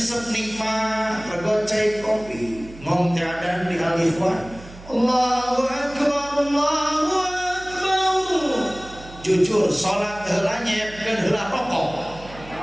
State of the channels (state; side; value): noise; right; hum, 18 dB below the sound